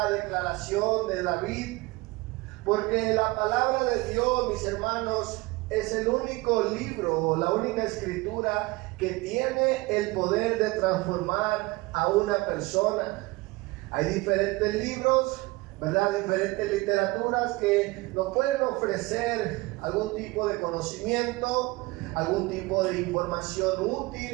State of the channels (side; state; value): left; quieter; 22.5 dB